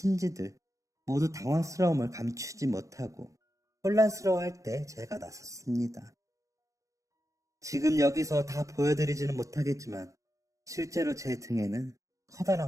모두 당황스러움을 감추지 못하고 혼란스러워할 때 제가 나섰습니다. 지금 여기서 다 보여드리지는 못하겠지만 실제로 제 등에는 커다란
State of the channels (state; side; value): late; left; 0.16 ms